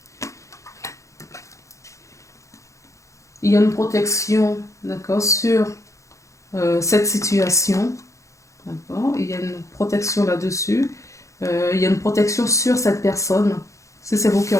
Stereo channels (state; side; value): late; right; 0.15 ms